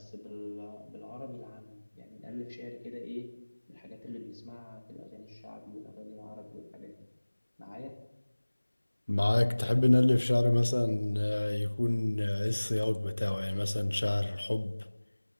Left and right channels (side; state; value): both; inverted; correlation -1.00